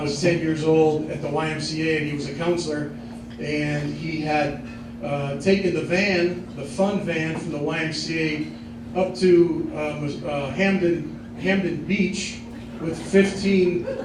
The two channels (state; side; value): identical; both; correlation 1.00